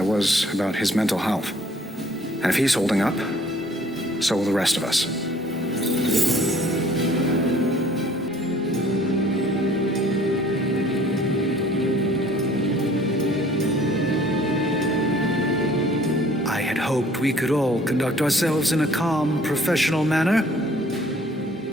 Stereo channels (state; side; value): normal; both; correlation 0.56